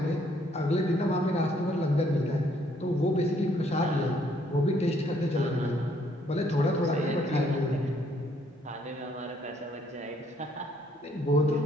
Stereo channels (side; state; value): both; normal; correlation 0.67